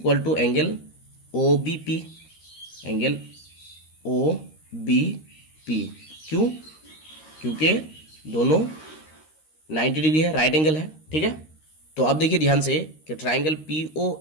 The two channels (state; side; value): late; right; 13 ms